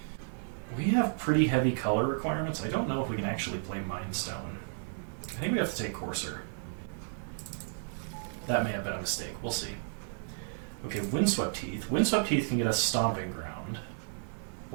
we have pretty heavy color requirements. I don't know if we can actually play Mindstone. I think we have to take Coarser. That may have been a mistake. We'll see. Okay, Windswept Heath. Windswept Heath can get us Stomping Ground,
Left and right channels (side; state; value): left; silent; 56 dB below the other